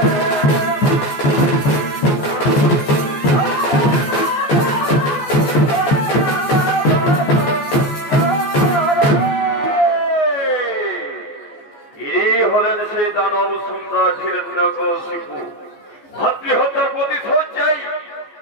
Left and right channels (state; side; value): late; right; 14 ms